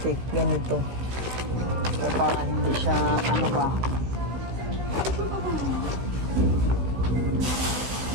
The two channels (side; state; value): left; late; 16 ms